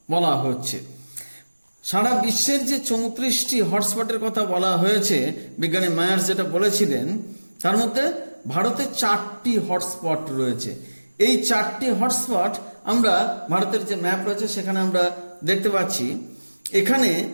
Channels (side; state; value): both; inverted; correlation -1.00